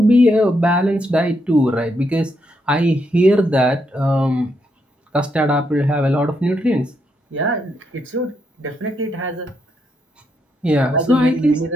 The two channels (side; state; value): both; normal; correlation 0.79